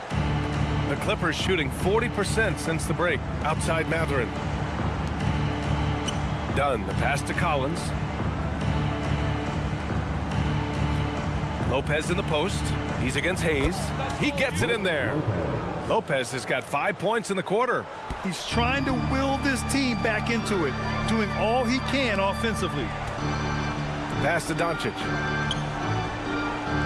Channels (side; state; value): both; identical; correlation 1.00